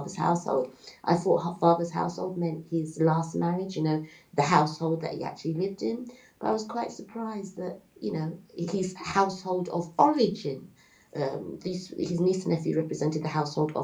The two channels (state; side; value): identical; both; correlation 1.00